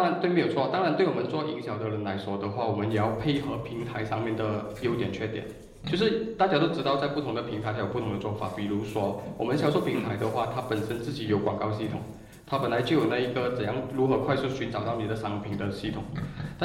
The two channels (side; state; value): both; identical; correlation 1.00